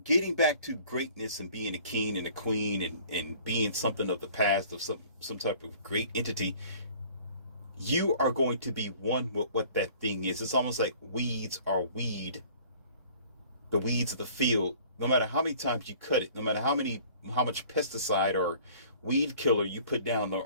getting back to greatness and being a king and a queen, and being something of the past, of some type of great entity, you are going to be one with what that thing is. It's almost like weeds are weed, the weeds of the field. No matter how many times you cut it, no matter how much pesticide or weed killer you put down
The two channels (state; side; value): inverted; both; correlation -0.51